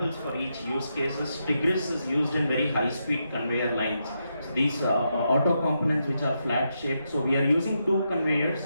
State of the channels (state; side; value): inverted; both; correlation -0.83